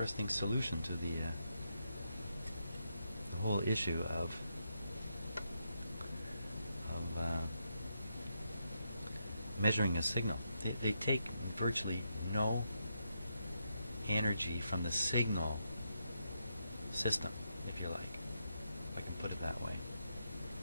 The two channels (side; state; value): both; inverted; correlation -0.82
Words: solution to the whole issue of measuring a signal. They take virtually no energy from the signal system, if you like. If I can put it that way.